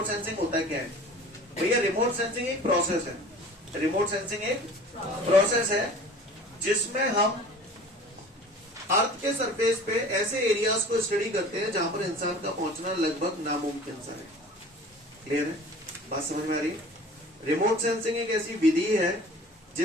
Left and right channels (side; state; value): both; normal; correlation 0.44